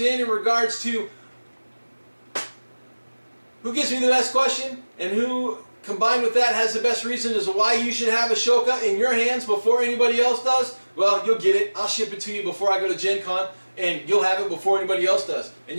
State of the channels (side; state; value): both; inverted; correlation -1.00